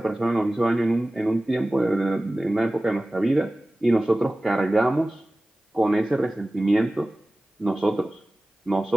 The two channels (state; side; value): normal; both; correlation 0.97